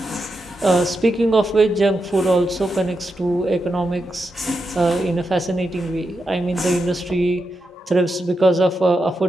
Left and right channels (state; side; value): normal; both; correlation 0.87